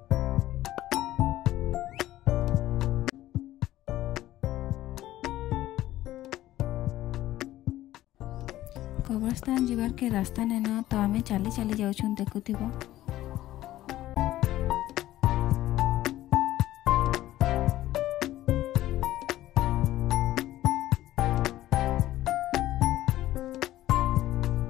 कब्रस्तान जीवार के रास्ता ने ना तो आम चली चली जाऊँ देखुथिबो।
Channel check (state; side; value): quieter; right; 14.6 dB